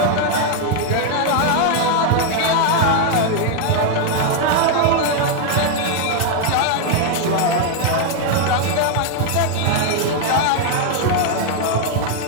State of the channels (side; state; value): both; different; correlation 0.00